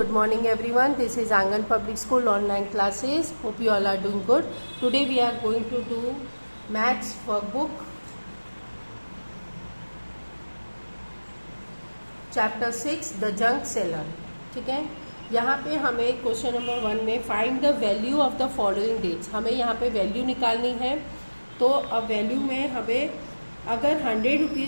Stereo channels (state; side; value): inverted; both; correlation -1.00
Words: morning everyone. This is Angan Public School online classes. Hope you all are doing good. Today we are going to do maths workbook chapter 6 the junk seller. ठीक है, यहाँ पे हमें question number 1 में find the value of the following dates, हमें यहाँ पे value निकालनी है। तो अब वैल्यू में हमें अगर 100